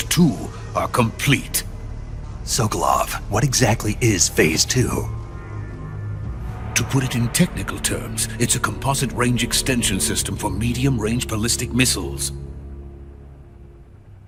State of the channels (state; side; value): identical; both; correlation 1.00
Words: 2 are complete. Sokolov, what exactly is Phase 2? To put it in technical terms, it's a composite range extension system for medium-range ballistic missiles.